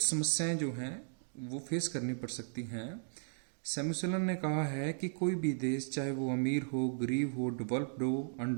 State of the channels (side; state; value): left; silent; digital silence